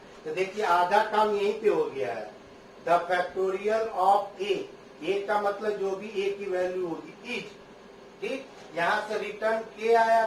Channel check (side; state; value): both; identical; correlation 1.00